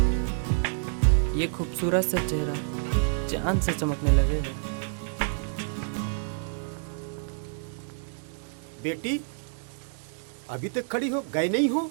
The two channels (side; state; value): left; silent; digital silence